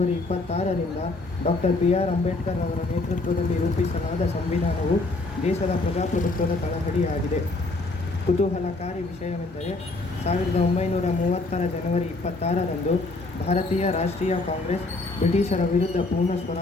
26ರಿಂದ ಡಾಕ್ಟರ್ BR ಅಂಬೇಡ್ಕರ್ ಅವರ ನೇತೃತ್ವದಲ್ಲಿ ರೂಪಿಸಲಾದ ಸಂವಿಧಾನವು ದೇಶದ ಪ್ರಜಾಪ್ರಭುತ್ವದ ತಳಹದಿಯಾಗಿದೆ. ಕುತೂಹಲಕಾರಿ ವಿಷಯವೆಂದರೆ 1930ರ ಜನವರಿ 26ರಂದು ಭಾರತೀಯ ರಾಷ್ಟ್ರೀಯ ಕಾಂಗ್ರೆಸ್ ಬ್ರಿಟಿಷರ ವಿರುದ್ಧ ಪೂರ್ಣ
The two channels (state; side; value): quieter; right; 3.2 dB